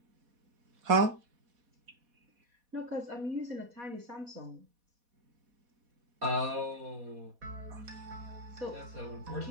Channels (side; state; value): left; late; 4.2 ms